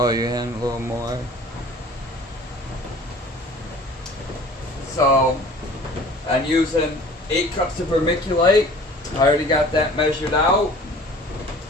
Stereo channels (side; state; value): both; normal; correlation 0.47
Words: you in a little more. So I'm using 8 cups of vermiculite. I already got that measured out.